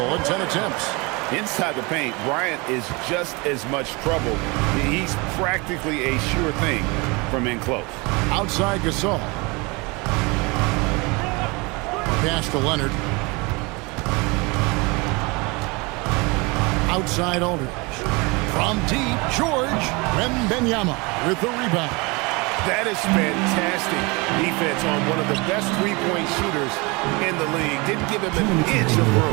in 10 attempts. Inside the paint, Bryant is just as much trouble. He's practically a sure thing from in close. Outside Gasol. Pass to Leonard. Outside Aldridge. From deep, George Wembanyama with the rebound. That is fantastic defense on one of the best 3-point shooters in the league. Didn't give him an inch of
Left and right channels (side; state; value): left; quieter; 26.9 dB